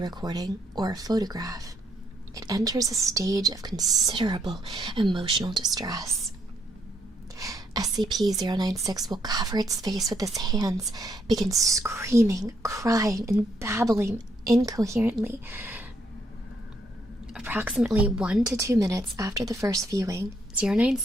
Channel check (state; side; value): normal; both; correlation 0.74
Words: recording, or a photograph, it enters a stage of considerable emotional distress. SCP-096 will cover its face with its hands, begin screaming, crying, and babbling incoherently. Approximately 1 to 2 minutes after the first viewing,